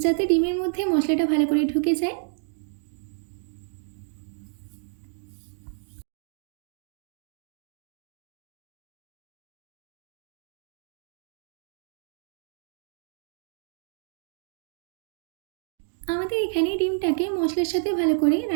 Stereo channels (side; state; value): left; silent; digital silence